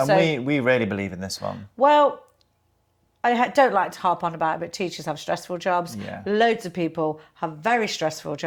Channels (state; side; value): identical; both; correlation 1.00